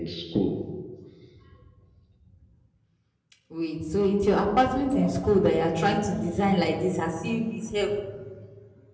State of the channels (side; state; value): both; identical; correlation 1.00